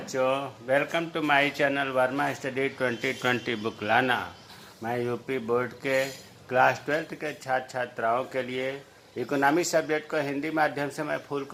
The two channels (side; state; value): both; identical; correlation 1.00